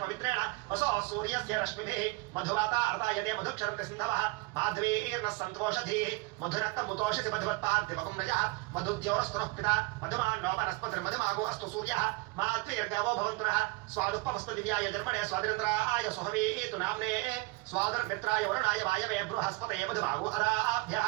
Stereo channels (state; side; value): quieter; left; 24.0 dB